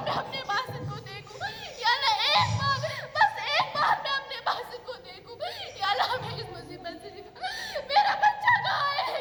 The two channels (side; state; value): both; identical; correlation 1.00